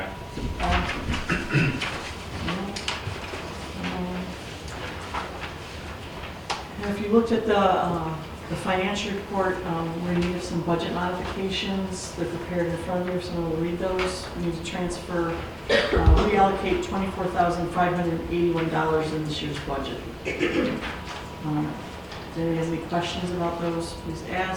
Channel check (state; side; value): identical; both; correlation 1.00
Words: And if you looked at the financial report, we're in need of some budget modifications. They're prepared in front of you, if someone will read those. We need to transfer, reallocate $24,581 in this year's budget. If anybody has any questions about those, please